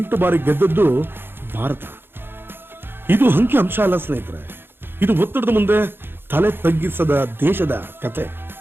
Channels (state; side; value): late; left; 0.10 ms